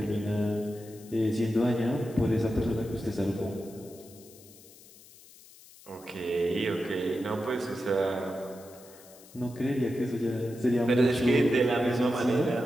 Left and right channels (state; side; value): noise; left; hiss, 22 dB below the sound